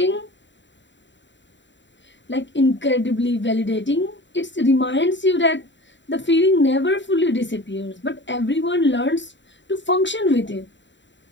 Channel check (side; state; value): right; late; 0.53 ms